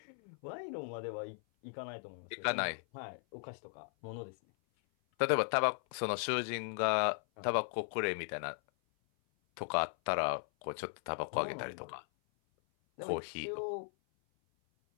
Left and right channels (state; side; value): silent; right; 53 dB below the other